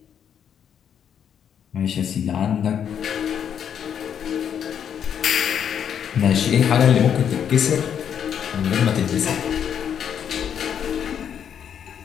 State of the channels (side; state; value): right; quieter; 8.5 dB